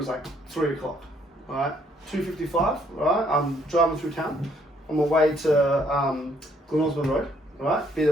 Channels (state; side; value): normal; both; correlation 0.67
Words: like 3 o'clock, right? 2:55, right? I'm driving through town on my way to Glen Osmond Road, right? Be